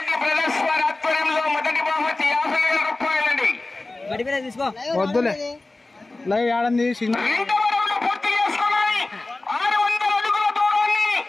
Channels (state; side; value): quieter; right; 3.1 dB